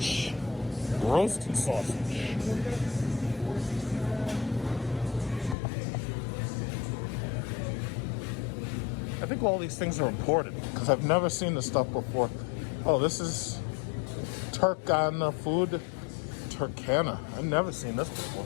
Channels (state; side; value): drops out; right; at 5.6 s